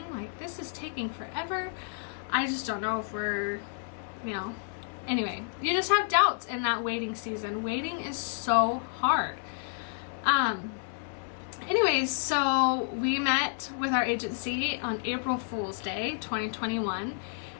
Like, this is taking forever. I just don't know if we're, anyway, you just have doubts in that waiting season. Waiting is so hard. Anyways, so we met with our agency on April Fool's Day 2021,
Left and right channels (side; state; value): right; silent; 58 dB below the other